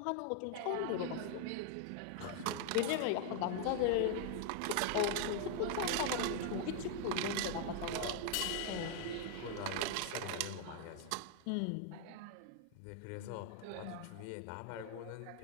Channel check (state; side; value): different; both; correlation 0.00